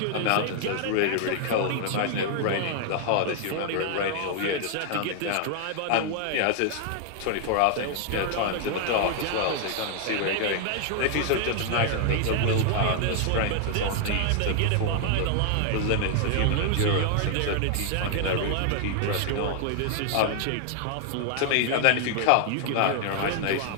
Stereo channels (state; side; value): different; both; correlation 0.00